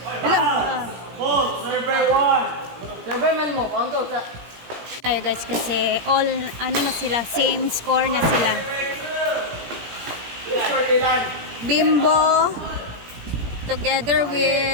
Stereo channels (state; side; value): late; left; 17 ms